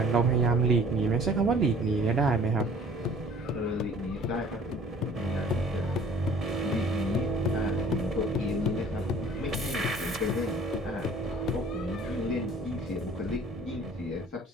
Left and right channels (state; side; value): normal; both; correlation 0.51